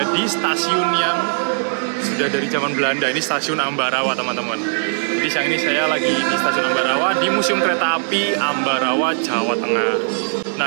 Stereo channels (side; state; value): left; silent; 66 dB below the other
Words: di stasiun yang sudah dari zaman Belanda, ini Stasiun Ambarawa teman-teman. Jadi siang ini saya lagi di Stasiun Ambarawa di Museum Kereta Api Ambarawa, Jawa Tengah.